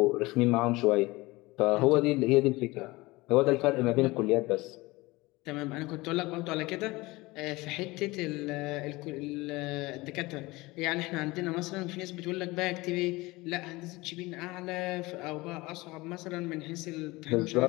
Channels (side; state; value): right; quieter; 21.7 dB